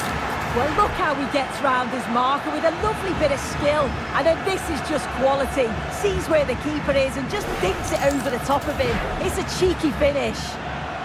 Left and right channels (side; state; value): both; identical; correlation 1.00